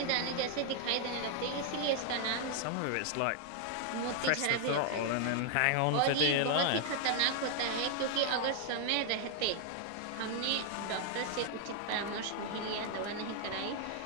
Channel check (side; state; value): both; different; correlation 0.00